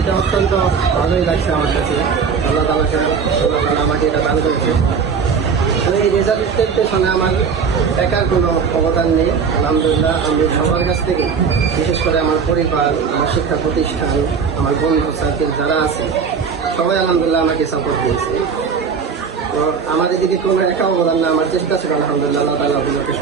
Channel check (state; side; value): quieter; left; 6.0 dB